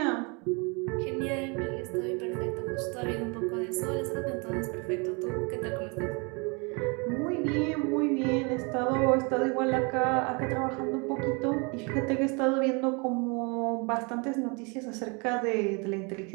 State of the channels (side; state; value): left; quieter; 31.6 dB